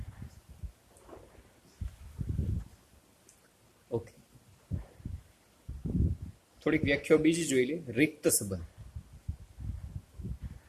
ઓકે, થોડીક વ્યાખ્યાઓ બીજી જોઈ લે. રિક્ત સંબંધ.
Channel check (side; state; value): both; identical; correlation 1.00